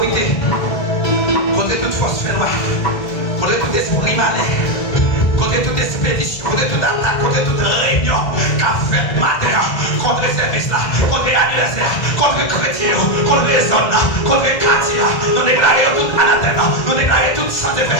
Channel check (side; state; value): right; late; 2.1 ms